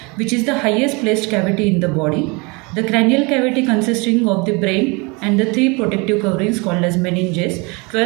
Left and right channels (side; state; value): left; quieter; 28.3 dB